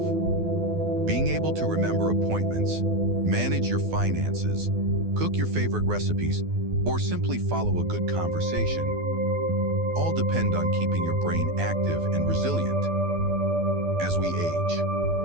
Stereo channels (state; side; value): late; left; 12 ms